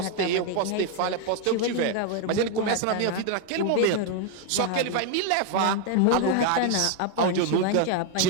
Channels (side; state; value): both; different; correlation 0.01